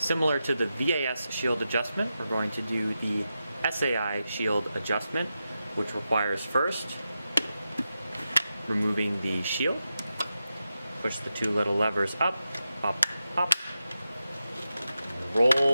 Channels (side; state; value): both; inverted; correlation -0.90